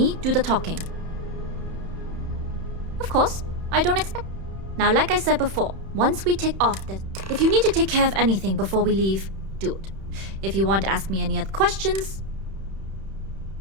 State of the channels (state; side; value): late; left; 31 ms